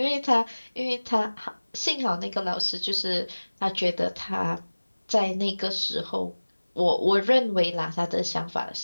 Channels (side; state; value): both; inverted; correlation -1.00